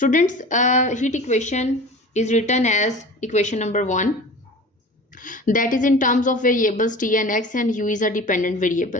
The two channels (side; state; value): both; normal; correlation 0.38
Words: heat equation is written as equation number 1, that is in terms of variables t and x, and u is a dependent